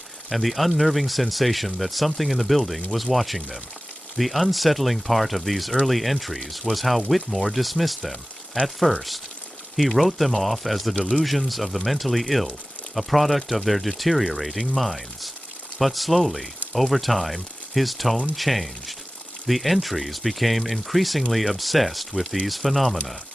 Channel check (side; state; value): both; normal; correlation 0.97